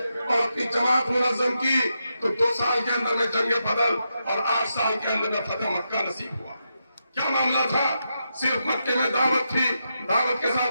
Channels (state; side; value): inverted; both; correlation -0.85